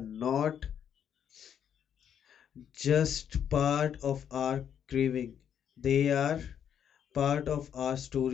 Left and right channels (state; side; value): quieter; right; 8.8 dB